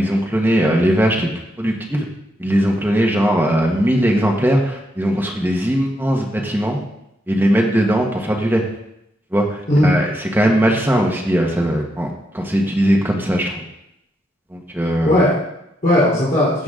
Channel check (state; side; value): normal; both; correlation 0.81